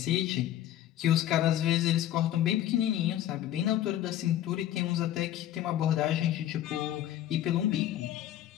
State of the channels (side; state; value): right; quieter; 12.2 dB